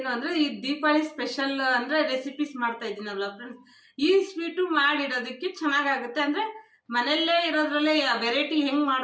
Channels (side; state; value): both; identical; correlation 1.00